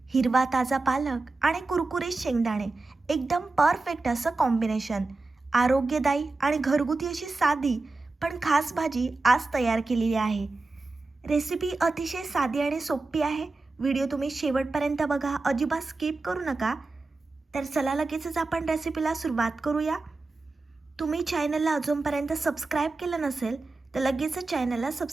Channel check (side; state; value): left; quieter; 3.5 dB